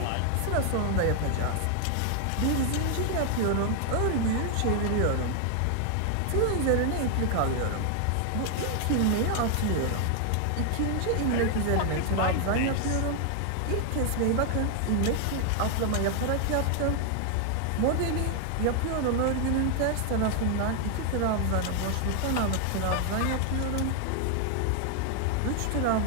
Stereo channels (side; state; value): both; different; correlation 0.00